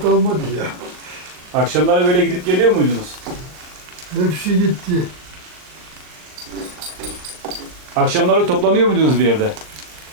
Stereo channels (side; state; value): left; late; 39 ms